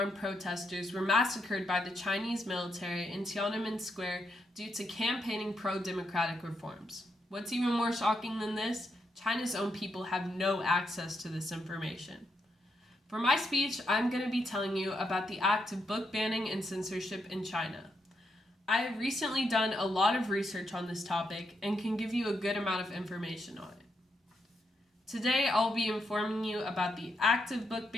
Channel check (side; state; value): both; normal; correlation 0.80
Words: protesters were massacred by the Chinese military in Tiananmen Square due to campaigning pro-democratic reforms. What's even more shocking than this? China's own people have no access to this information. For my speech, I'm going to be telling you about the act of book banning and censorship in China. I have recently done a lot of research on this topic and can give you a good amount of information on it. Today, I'll be informing you about the act of book